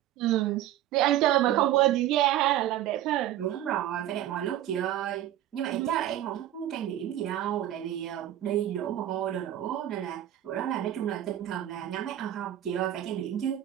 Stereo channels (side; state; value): left; quieter; 12.6 dB